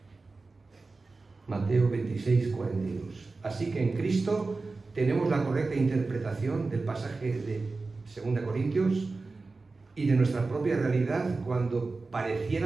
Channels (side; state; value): left; quieter; 3.8 dB